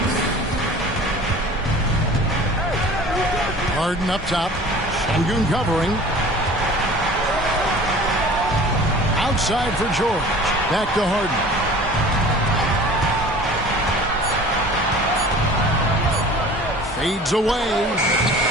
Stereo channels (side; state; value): both; normal; correlation 0.44